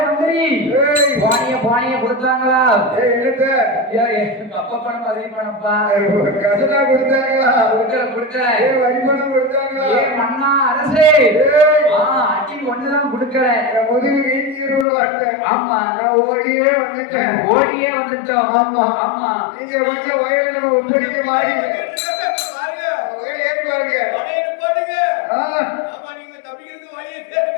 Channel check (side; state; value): right; drops out; at 14.9 s